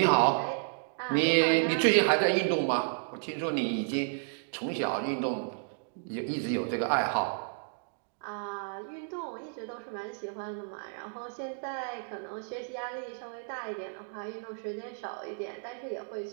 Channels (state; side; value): silent; left; digital silence